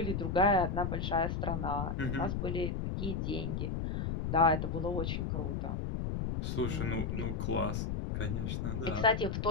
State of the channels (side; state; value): left; noise; rumble, 1 dB below the sound